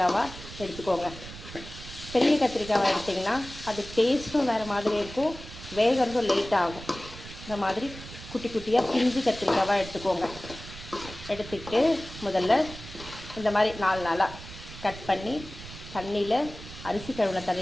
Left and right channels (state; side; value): noise; right; rumble, 14 dB below the sound